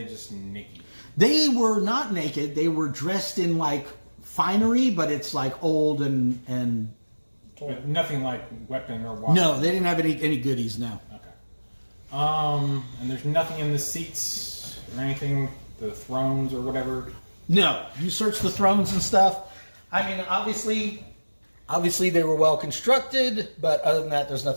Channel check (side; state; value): both; inverted; correlation -1.00